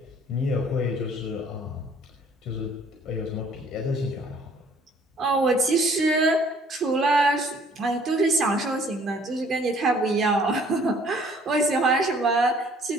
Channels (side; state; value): both; normal; correlation 0.57